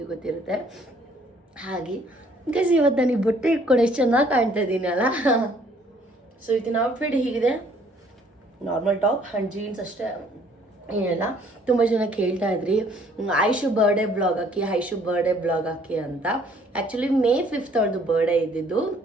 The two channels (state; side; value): normal; both; correlation 0.61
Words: ಗೊತ್ತಿರುತ್ತೆ. ಹಾಗೆ ಗೈಸ್, ಇವತ್ತು ನನಗೆ ಬಟ್ಟೆ ಇಟ್ಕೊಂಡು ಎಷ್ಟು ಚೆನ್ನಾಗಿ ಕಾಣ್ತಾ ಇದ್ದೀನಿ ಅಲ್ಲ. ಸೊ ಇವತ್ತಿನ ಔಟ್ಫಿಟ್ ಹೀಗಿದೆ, ನಾರ್ಮಲ್ ಟಾಪ್ ಆ್ಯಂಡ್ ಜೀನ್ಸ್ ಅಷ್ಟೇ, ಏನಿಲ್ಲ. ತುಂಬ ಜನ ಕೇಳ್ತಾ ಇದ್ರಿ ಐಶು ಬರ್ಡೇ ಬ್ಲಾಗ್ ಹಾಕಿ ಅಂತ. ಆ್ಯಕ್ಚುಲಿ May 5th ಅವಳದು ಬರ್ಡೇ ಇದ್ದಿದ್ದು.